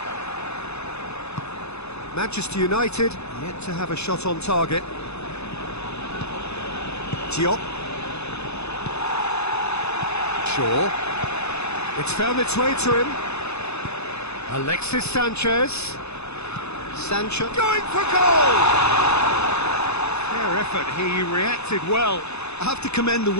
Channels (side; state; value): right; late; 0.80 ms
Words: Manchester United yet to have a shot on target. Diop. Shaw. It's found its way to him. Alexis Sanchez. Sancho going for goal! Fair effort, he reacted well. I have to commend the